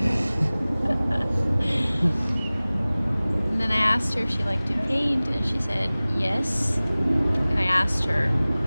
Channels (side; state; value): both; inverted; correlation -0.99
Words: And then I asked her if she liked to paint, and she said yes. And I asked her,